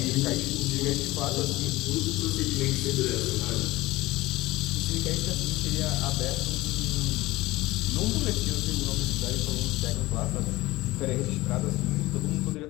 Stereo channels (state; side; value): quieter; right; 19.0 dB